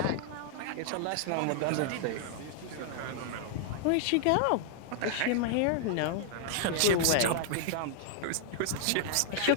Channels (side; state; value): both; different; correlation -0.01